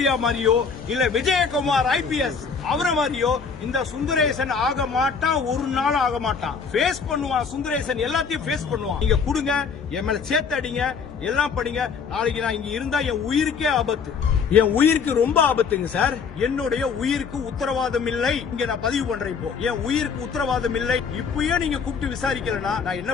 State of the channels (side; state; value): right; quieter; 5.8 dB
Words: மாதிரியோ இல்ல விஜயகுமார் IPS அவரை மாதிரியோ இந்த சுந்தரேசன் ஆக மாட்டான், ஒரு நாள் ஆக மாட்டான். ஃபேஸ் பண்ணுவான் சுந்தரேசன், எல்லாத்தையும் ஃபேஸ் பண்ணுவான். நீங்க கொடுங்க, என் மேல சேர்த்து அடிங்க, எல்லாம் படிங்க. நாளைக்கு நான் இங்க இருந்தா என் உயிருக்கே ஆபத்து, என் உயிருக்கு ரொம்ப ஆபத்துங்க சார். என்னுடைய உயிருக்கு உத்தரவாதம் இல்லை. இங்க நான் பதிவு பண்றேன். இப்போ என் உயிருக்கு உத்தரவாதம் இல்லை. இப்பயே நீங்க கூப்பிட்டு விசாரிக்கலனா நான் என்ன